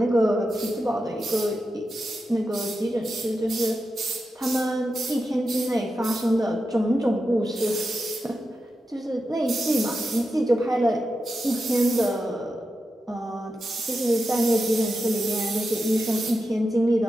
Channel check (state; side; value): normal; both; correlation 0.89